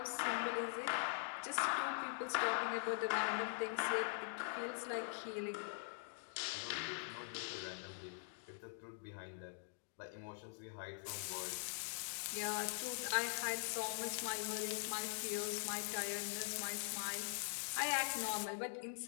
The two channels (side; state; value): right; silent; digital silence